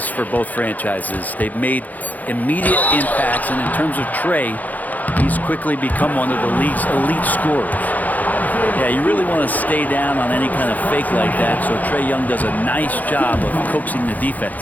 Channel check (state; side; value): late; right; 0.080 ms